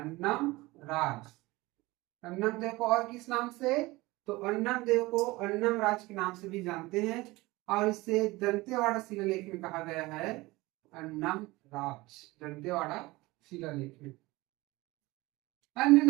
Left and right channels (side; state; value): left; quieter; 20.9 dB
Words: राज। अन्नम देव को और किस नाम से? तो अन्नम देव को अन्नम राज के नाम से भी जानते हैं और इसे दंतेवाड़ा शिलालेख में कहा गया है अन्नम राज। दंतेवाड़ा शिलालेख में। अन्य